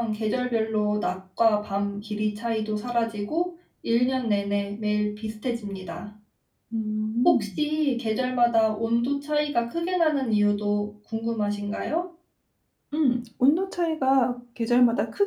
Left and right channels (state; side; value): identical; both; correlation 1.00